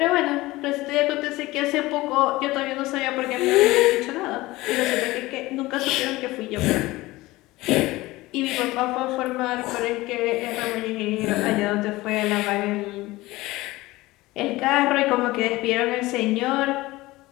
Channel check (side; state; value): right; quieter; 19.3 dB